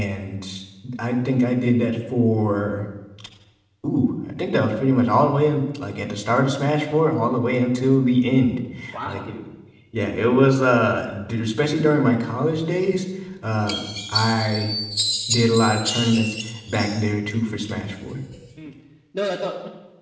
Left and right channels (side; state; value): both; identical; correlation 1.00